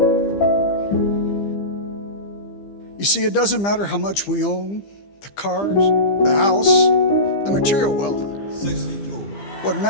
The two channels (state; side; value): late; right; 15 ms